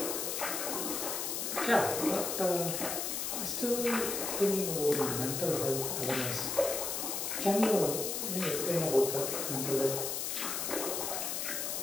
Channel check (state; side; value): noise; left; hiss, 2 dB below the sound